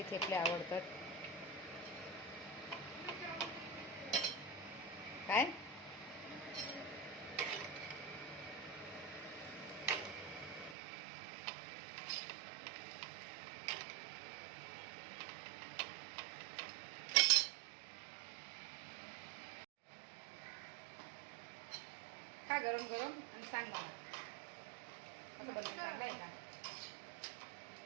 थेपले आवडतात? काय खा गरम गरम आणि सांग मला कसं बनवायचं. चांगलं आहे का?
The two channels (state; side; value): drops out; left; at 10.8 s